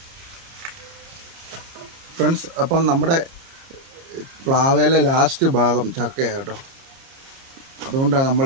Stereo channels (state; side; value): late; left; 30 ms